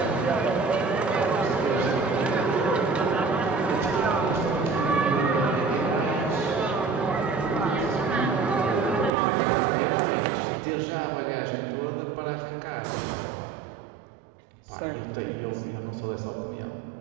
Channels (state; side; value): drops out; left; at 9.1 s